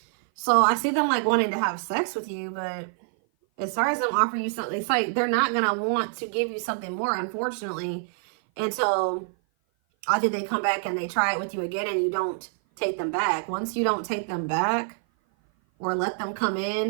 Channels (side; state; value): left; silent; 56 dB below the other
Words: So I see them like wanting to have sex with you, but as far as them offering you something, it's like they're not going to want to give you something more, unfortunately, until either they come back and they try it with you again and you don't take them back. Once you don't take them back or let them come